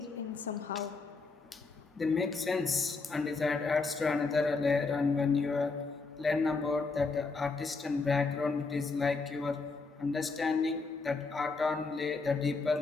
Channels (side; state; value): right; quieter; 4.1 dB